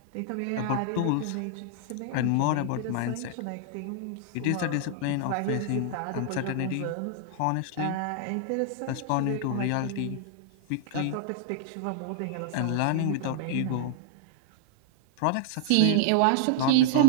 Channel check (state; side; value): different; both; correlation -0.01